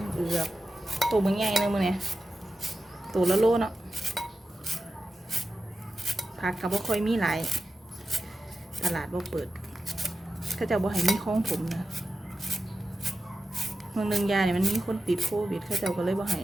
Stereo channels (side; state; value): both; normal; correlation 0.92